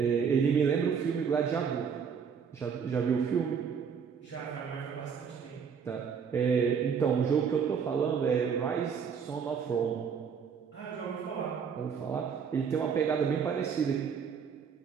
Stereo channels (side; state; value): left; quieter; 6.7 dB